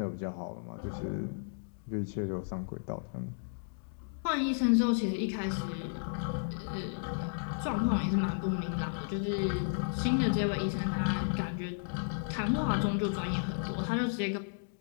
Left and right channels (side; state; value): right; silent; digital silence